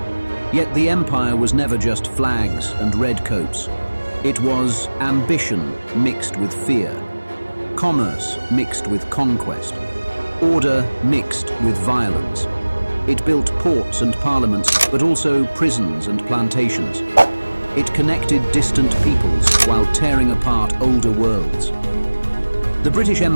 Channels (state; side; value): inverted; both; correlation -1.00